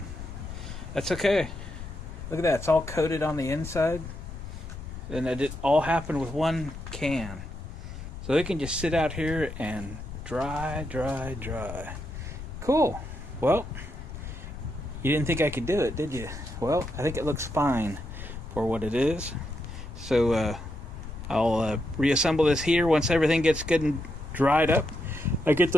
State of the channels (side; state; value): left; noise; rumble, 10 dB below the sound